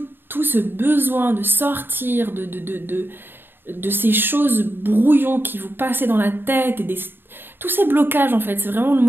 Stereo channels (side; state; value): left; late; 0.099 ms